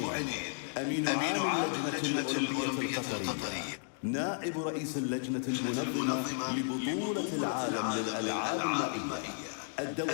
أمين عام اللجنة الأولمبية القطرية، نائب رئيس اللجنة المنظمة لبطولة العالم للألعاب المائية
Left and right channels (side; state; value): right; silent; digital silence